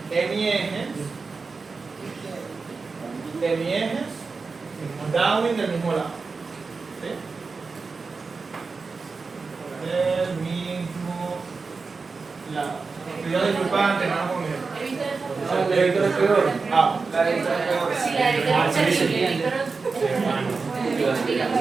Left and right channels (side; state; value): left; quieter; 4.4 dB